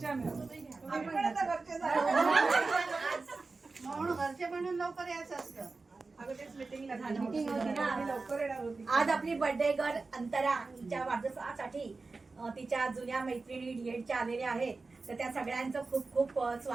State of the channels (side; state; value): left; quieter; 3.9 dB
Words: म्हणून घरचे म्हणून लवकर यायचं असतं. आज आपली बर्थडे गर्ल अंतरा तिच्या वाढदिवसासाठी तिच्या जुन्या मैत्रिणी डीएडच्या आलेल्या आहेत. तर त्या सगळ्यांचं खूप खूप